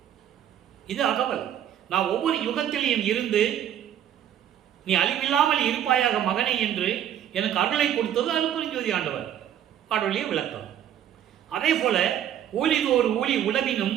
இது அகவல். நான் ஒவ்வொரு யுகத்திலையும் இருந்து நீ அழிவில்லாமல் இருப்பாயாக மகனே என்று எனக்கு அருளை கொடுத்தது அருப்பெருஞ்சோதி ஆண்டவர். பாடலிய விளக்கம். அதே போல ஊழிது ஒரு ஊழி உழவினும்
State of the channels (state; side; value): quieter; left; 10.4 dB